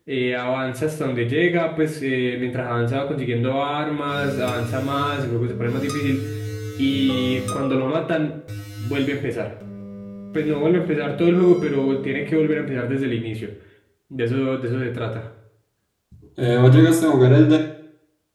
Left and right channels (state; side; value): identical; both; correlation 1.00